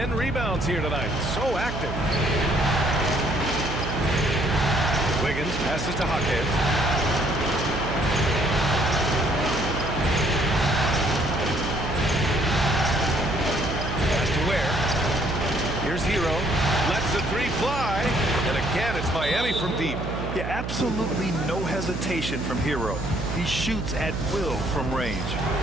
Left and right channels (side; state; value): right; noise; hum, 6 dB below the sound